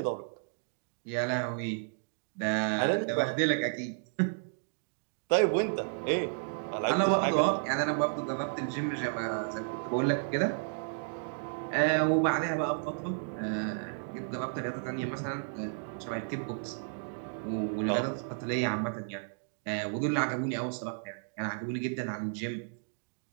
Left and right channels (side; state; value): left; silent; digital silence